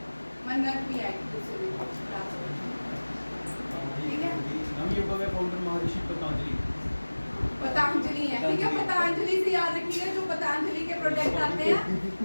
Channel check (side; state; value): both; inverted; correlation -1.00